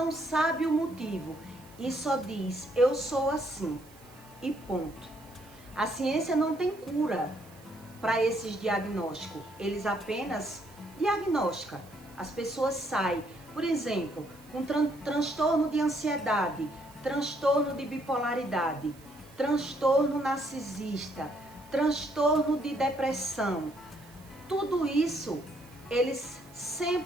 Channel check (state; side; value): noise; right; hiss, 25 dB below the sound